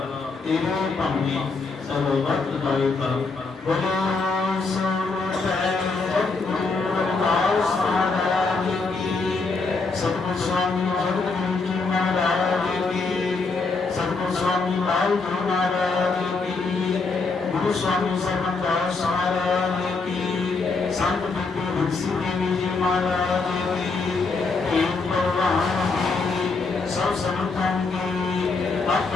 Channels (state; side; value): quieter; right; 4.1 dB